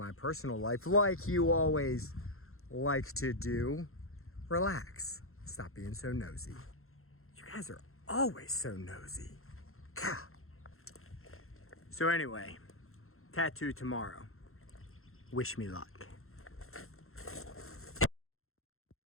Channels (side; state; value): right; late; 0.62 ms